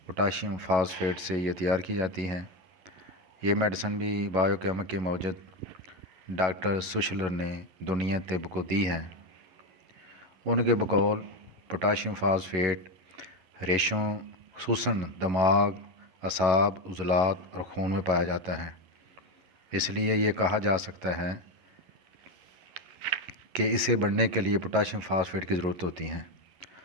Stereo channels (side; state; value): left; late; 11 ms